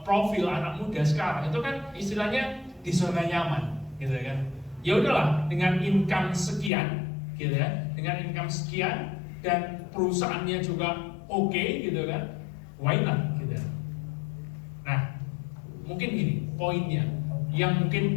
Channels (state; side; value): drops out; right; at 6.7 s